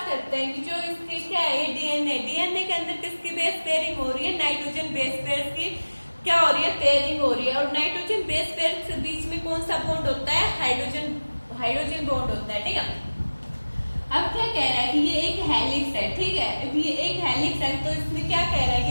करते हैं कि जो इसकी क्या है डीएनए, डीएनए के अंदर किसकी बेस पेयरिंग हो रही है, नाइट्रोजन बेस पेयर की क्या हो रही है, पेयरिंग हो रही है। और नाइट्रोजन बेस पेयर के बीच में कौन सा बॉन्ड होता है, हाइड्रोजन बॉन्ड होता है, ठीक है। अब क्या कह रहा है कि ये एक हेलिक्स है, ठीक है। अब ये एक हेलिक्स है तो इसमें क्या कह रहा है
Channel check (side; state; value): both; inverted; correlation -1.00